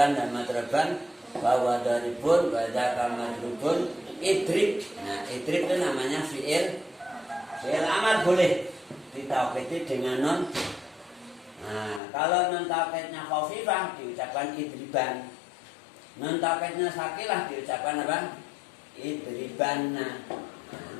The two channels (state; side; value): drops out; right; at 12.0 s